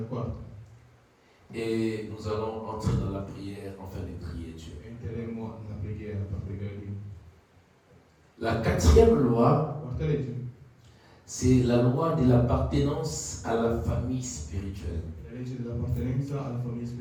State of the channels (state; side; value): identical; both; correlation 1.00